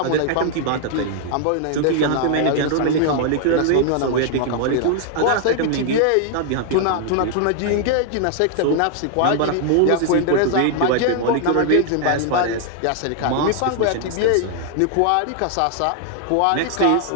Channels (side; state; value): both; different; correlation 0.00